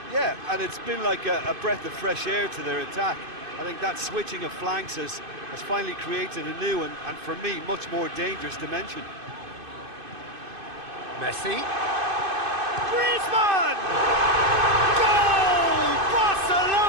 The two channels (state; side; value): late; left; 2.5 ms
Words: Yeah, and it's been like a breath of fresh air to their attack. I think that switching of flanks has finally created a new and for me, much more dangerous dimension. Messi. Griezmann! Goal!